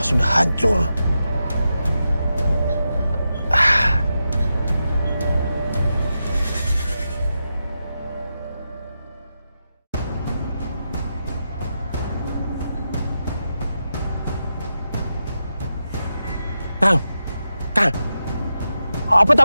sudah hancur. Kang, apa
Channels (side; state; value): both; inverted; correlation -0.88